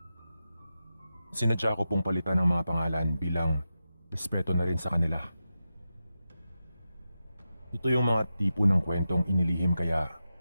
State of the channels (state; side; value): inverted; both; correlation -0.91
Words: Sinadya ko pong palitan ng mga pangalan bilang respeto na rin sa kanila. Ito yung mga tipo ng kwentong inilihim kaya